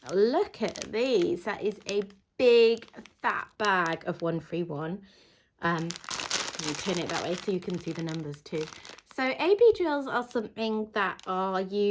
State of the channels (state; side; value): identical; both; correlation 1.00